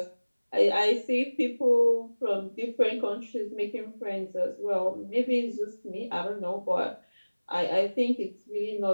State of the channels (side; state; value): both; inverted; correlation -1.00